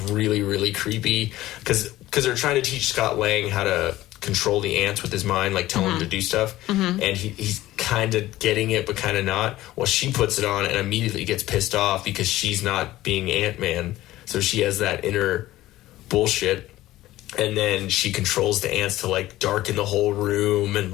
really, really creepy because they're trying to teach Scott Lang how to control the ants with his mind, like tell him to do stuff, and he's kind of getting it but kind of not. Well, she puts it on and immediately gets pissed off because she's not being Ant-Man, so she has that inner bullshit, and then she controls the ants to like darken the whole room and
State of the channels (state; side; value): quieter; right; 16.0 dB